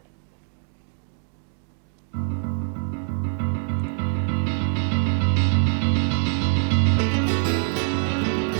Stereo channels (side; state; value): left; silent; 62 dB below the other